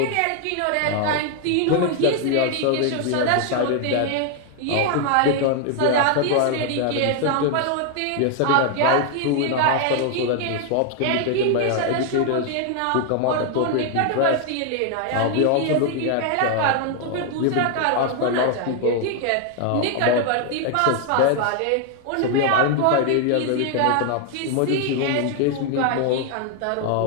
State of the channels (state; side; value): different; both; correlation 0.00